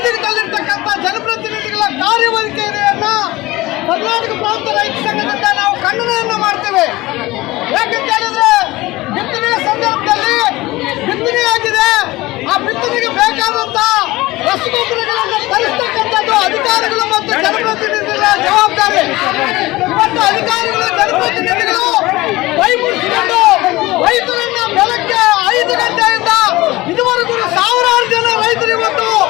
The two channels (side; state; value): right; quieter; 19.4 dB